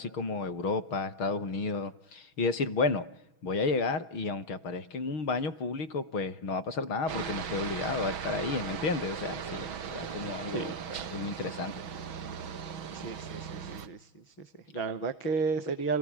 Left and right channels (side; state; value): right; late; 6.3 ms